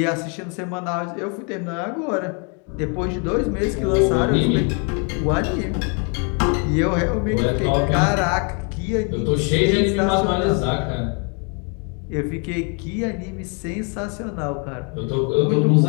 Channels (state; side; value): quieter; right; 37.0 dB